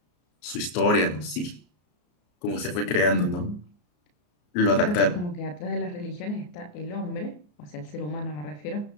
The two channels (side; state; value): right; late; 34 ms